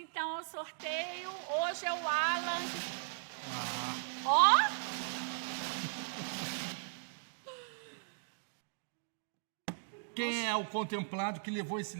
ao sorteio. Hoje é o Alan. Ó! Quem é o contemplado que levou esse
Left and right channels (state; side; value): silent; left; digital silence